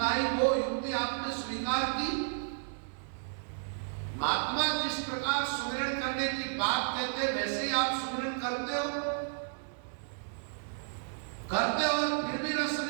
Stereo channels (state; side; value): silent; left; digital silence